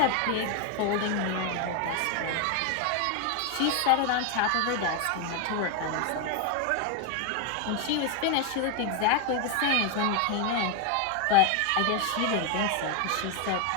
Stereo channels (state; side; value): different; both; correlation 0.01